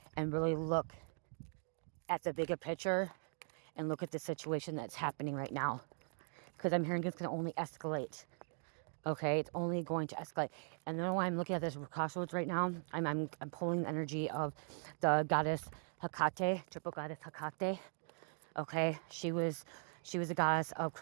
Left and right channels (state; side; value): silent; left; 51 dB below the other